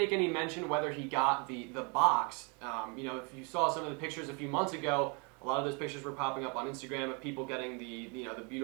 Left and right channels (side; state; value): left; quieter; 33.4 dB